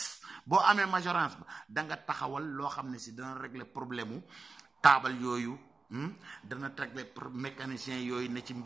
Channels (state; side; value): quieter; left; 4.0 dB